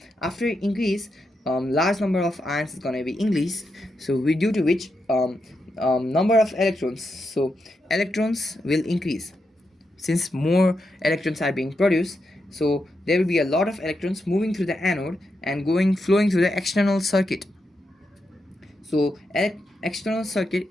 after increase, large number of ions is gonna be increased, so due to which number of electrons, so electrons will increase. Since more electrons are being produced, so there will be a lot of electrons moving through the anode and flowing through the external circuit. So external circuit,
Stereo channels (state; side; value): normal; both; correlation 0.85